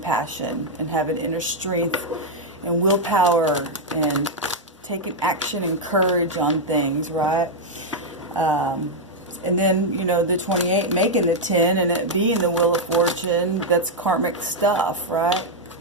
and having inner strength and willpower and taking action and courage on things, right? And then, you know, the 28 making the 10 and it being the Wheel of Fortune, that's karmic stuff, right?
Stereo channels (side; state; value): both; normal; correlation -0.01